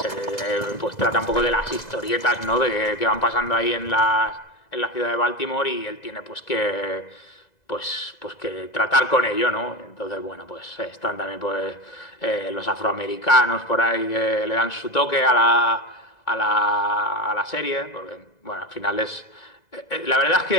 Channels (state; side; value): late; right; 2.0 ms